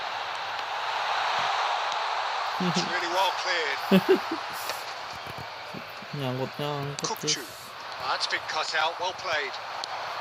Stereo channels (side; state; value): both; identical; correlation 1.00